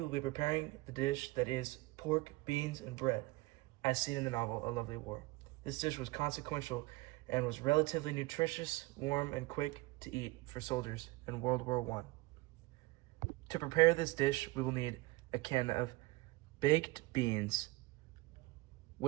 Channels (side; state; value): left; quieter; 21.6 dB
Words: be preparing the dish that is pork, beans, and bread, as seen in the novel A Lovely War. This dish was consequential and was relatively nutritious, warm, and quick to eat for soldiers in World War I. To prepare this dish, we will need a can of baked beans